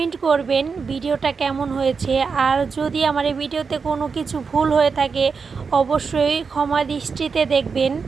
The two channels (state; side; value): quieter; left; 5.3 dB